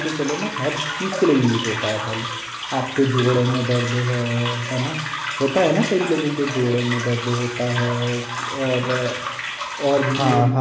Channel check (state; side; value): identical; both; correlation 1.00